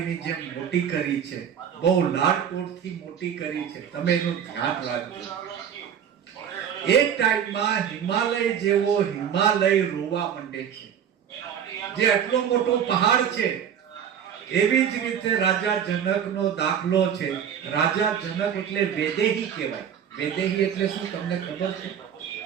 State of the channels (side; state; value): left; quieter; 8.6 dB